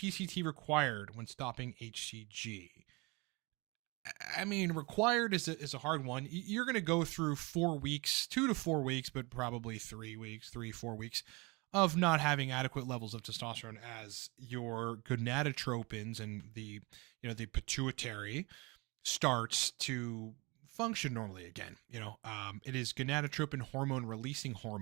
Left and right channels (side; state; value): left; quieter; 26.6 dB